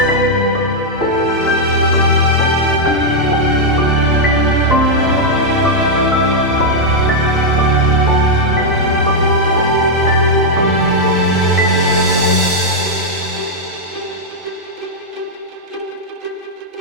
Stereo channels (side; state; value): both; normal; correlation -0.03